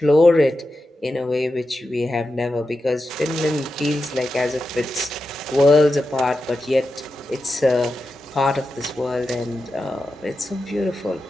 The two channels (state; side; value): normal; both; correlation 0.90